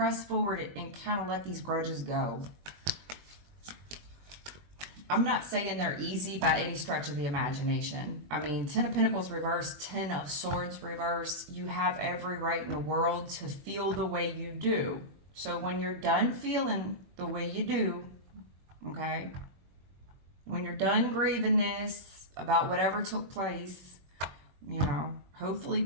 forward, and kind of let these grudges go. I'm not saying they're easy by any stretch of the imagination. I mean, 10 of Pentacles reverse, 10 of Swords reverse. You have every right in the world to feel the way you do. So when you're done feeling the way you do, okay, when you're done grieving this about whatever took place, hopefully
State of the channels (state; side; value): late; left; 21 ms